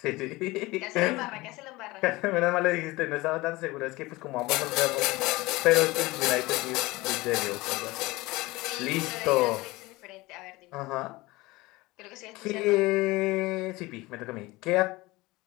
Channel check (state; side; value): quieter; right; 21.1 dB